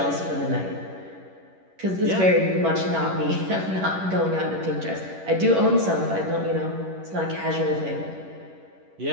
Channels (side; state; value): left; late; 11 ms